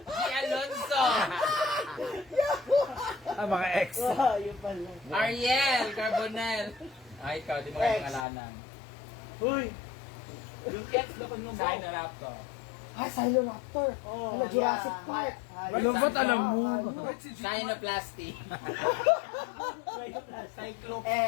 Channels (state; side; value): drops out; right; at 8.2 s